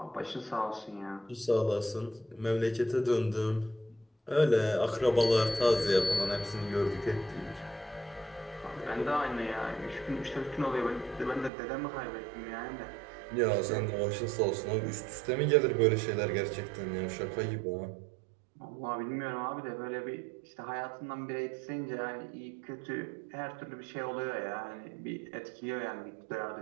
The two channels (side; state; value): left; drops out; at 11.5 s